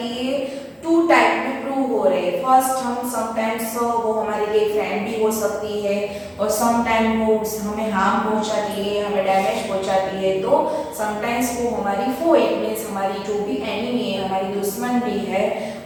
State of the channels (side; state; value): both; identical; correlation 1.00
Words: टू टाइप में प्रूव हो रहे हैं. फर्स्ट हम समटाइम्स वो हमारे लिए फ्रेंड भी हो सकती है और समटाइम वो हमें हार्म पहुंचाती है, हमें डैमेज पहुंचाती है. तो समटाइम्स वो हमारी फो, इट मीन्स हमारी जो भी एनिमी है, हमारी दुश्मन भी है,